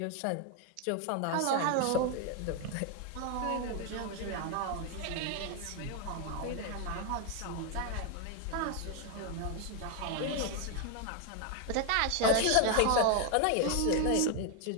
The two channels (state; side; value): different; both; correlation 0.01